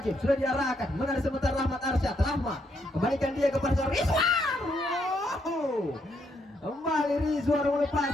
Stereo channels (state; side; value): normal; both; correlation 0.76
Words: sudah diarahkan, menarik sebentar Rahmat Arsyad. Rahmat kembalikan dia kepada seorang Rizwar. Kembali Rizwar